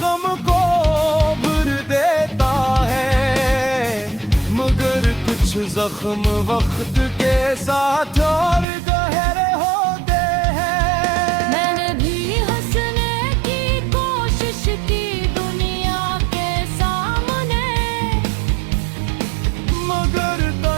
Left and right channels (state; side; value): drops out; left; at 8.7 s